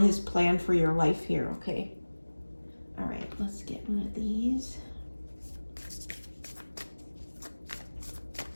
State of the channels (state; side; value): inverted; both; correlation -1.00